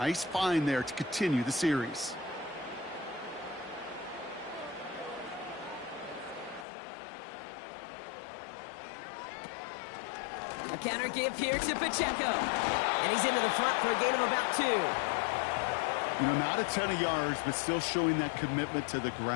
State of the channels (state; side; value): drops out; right; at 6.7 s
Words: find there to continue the series. A counter give here to Pacheco. And he's into the front for a gain of about 2. You know, not a ton of yards, but still showing that commitment to the